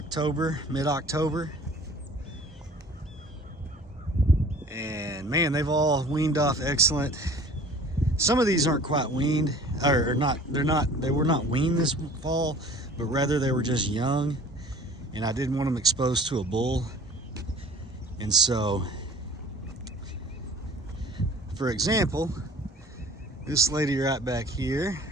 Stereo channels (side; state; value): both; normal; correlation 0.47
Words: mid-October, and man, they've all weaned off excellent. Some of these aren't quite weaned, or not. They were not weaned this fall, but rather they were just young, and I didn't want them exposed to a bull. And so, for example, this lady right back here,